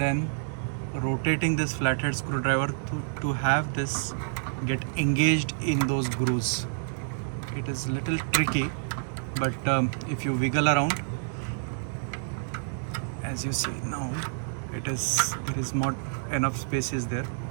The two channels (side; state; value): left; silent; digital silence